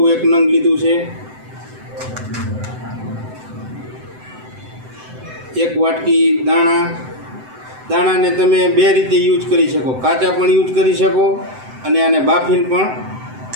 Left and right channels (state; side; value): late; left; 7.8 ms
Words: एक नंग लीधुं छे। एक वाटकी दाणा। दाणा ने तमे बे रीते यूज करी शको, काचा पण यूज करी शको अने आने बाफीने पण